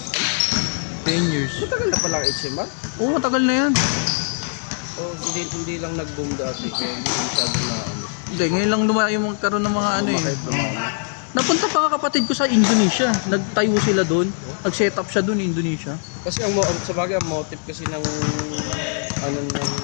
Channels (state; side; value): silent; right; digital silence